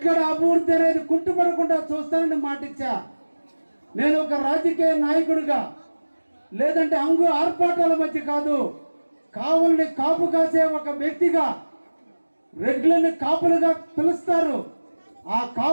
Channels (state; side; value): inverted; both; correlation -1.00